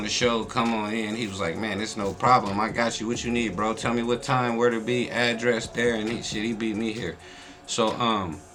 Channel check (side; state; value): both; identical; correlation 1.00